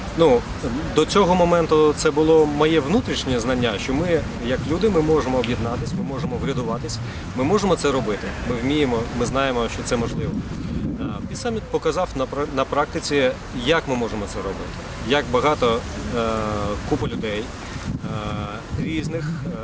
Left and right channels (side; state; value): both; identical; correlation 1.00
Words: ну, до цього моменту це було моє внутрішнє знання, що ми, як люди, ми можемо об'єднатися, ми можемо врядуватись, ми можемо це робити, ми вміємо, ми знаємо, що це можливо. Peace Summit показав на практиці, як ми можемо це робити, як багато купа людей різних,